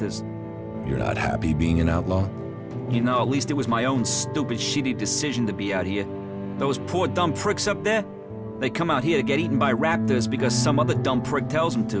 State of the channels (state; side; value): identical; both; correlation 1.00